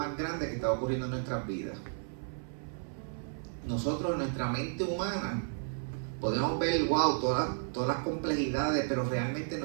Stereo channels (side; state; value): left; silent; 56 dB below the other